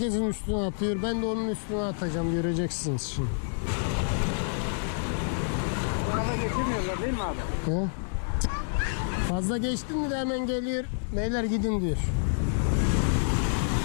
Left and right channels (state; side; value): silent; right; digital silence